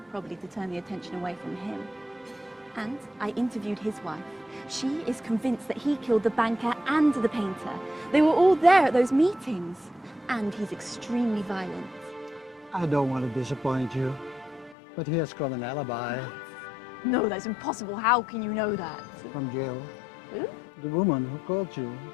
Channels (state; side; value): drops out; right; at 14.8 s